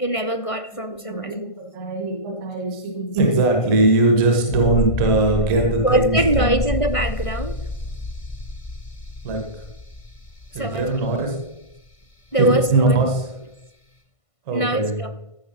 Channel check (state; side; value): late; right; 1.5 ms